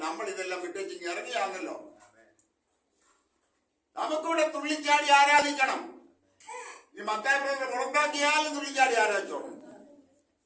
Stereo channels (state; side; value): identical; both; correlation 1.00